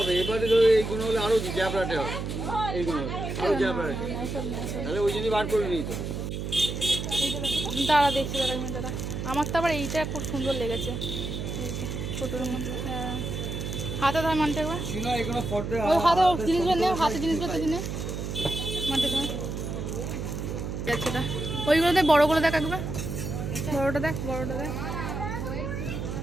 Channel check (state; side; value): noise; right; hum, 4 dB below the sound